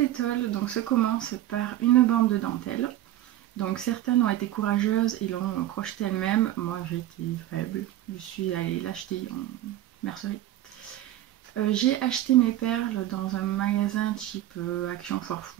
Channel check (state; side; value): quieter; left; 13.8 dB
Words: étole donc, se commence par une bande de dentelle. Donc certaines ont été courageuses et l'ont crochetée elles-mêmes. Moi j'ai été faible. Je suis allée l'acheter en mercerie. J'ai acheté mes perles dans un magasin type Action Foire